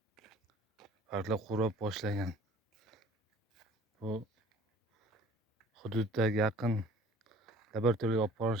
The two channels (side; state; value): both; normal; correlation 0.49